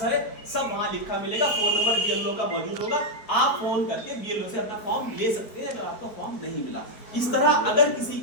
है, सब वहां लिखा मिलेगा। फोन नंबर बीएलओ का मौजूद होगा, आप फोन करके बीएलओ से अपना फॉर्म ले सकते हैं अगर आपको फॉर्म नहीं मिला। इस तरह अगर किसी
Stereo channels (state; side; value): late; right; 4.6 ms